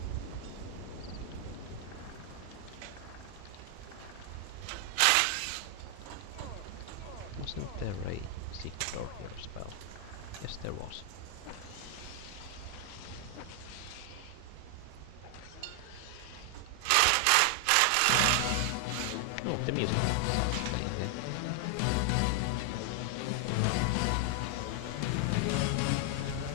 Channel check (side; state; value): both; different; correlation 0.00